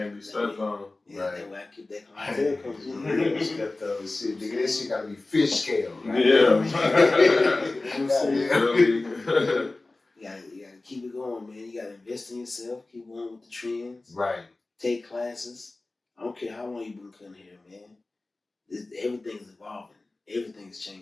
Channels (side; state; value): right; quieter; 3.1 dB